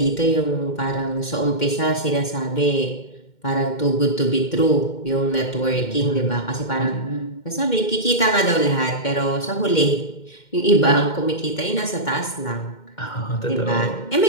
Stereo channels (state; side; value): late; right; 2.1 ms